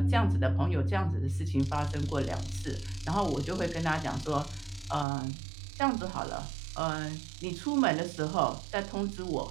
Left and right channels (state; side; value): drops out; left; at 5.1 s